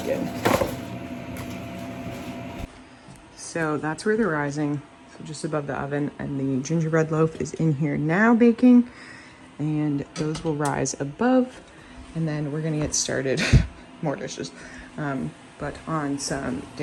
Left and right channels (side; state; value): both; identical; correlation 1.00